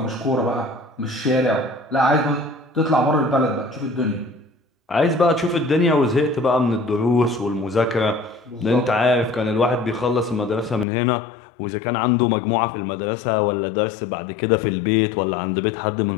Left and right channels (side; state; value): right; drops out; at 10.9 s